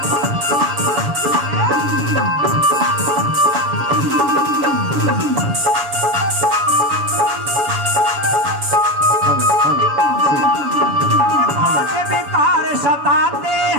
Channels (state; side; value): late; left; 7.0 ms